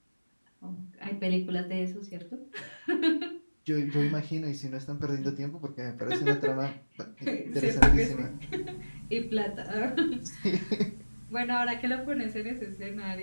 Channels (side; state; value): both; inverted; correlation -1.00